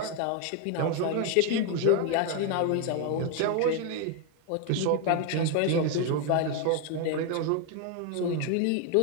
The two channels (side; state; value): both; different; correlation 0.01